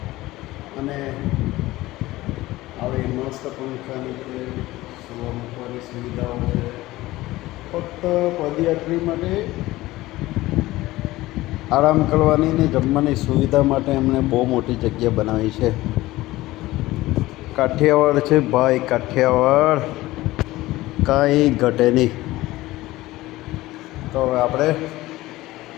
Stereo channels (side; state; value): right; quieter; 17.9 dB